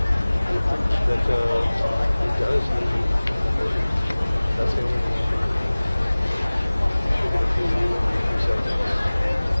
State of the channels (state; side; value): inverted; both; correlation -1.00